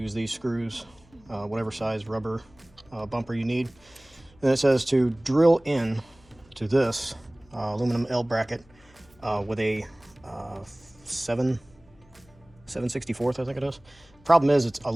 these screws, whatever size rubber bumper you need. And it says to drill in to this aluminum L bracket with a 7/64, I think it is. Problem is, it's a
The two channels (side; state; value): left; noise; hum, 28 dB below the sound